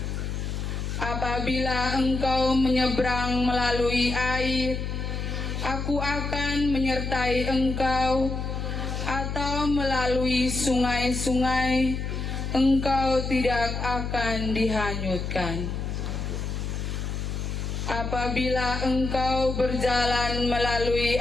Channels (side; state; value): left; noise; hum, 3 dB below the sound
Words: Apabila engkau menyeberang melalui air, aku akan menyertai engkau, atau melalui sungai-sungai, engkau tidak akan dihanyutkan. Apabila engkau berjalan melalui